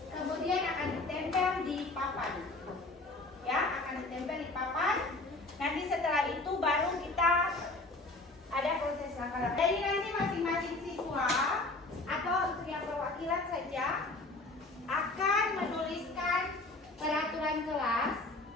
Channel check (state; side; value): quieter; right; 3.0 dB